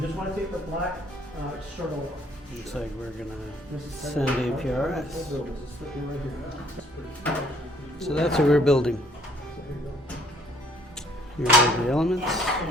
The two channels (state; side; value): normal; both; correlation 0.61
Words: just want to take the black circle off. Looks like we're gonna send APRS. So that's what we're building. Here are the elements.